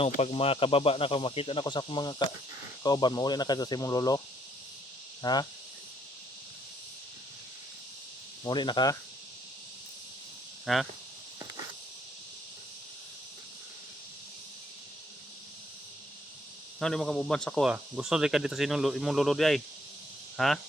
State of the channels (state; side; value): normal; both; correlation 0.68